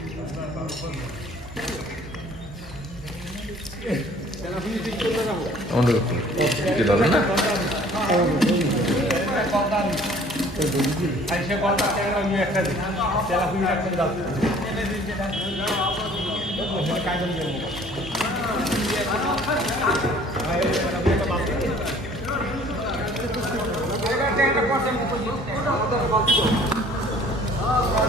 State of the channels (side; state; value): both; normal; correlation 0.54